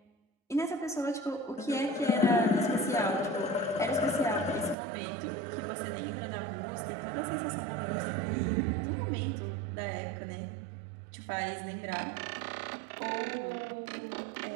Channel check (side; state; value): left; drops out; at 4.8 s